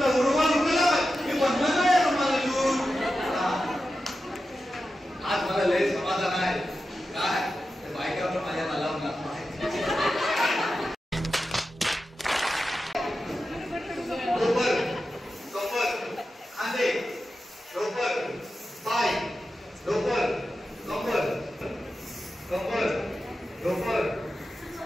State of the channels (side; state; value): both; normal; correlation 0.91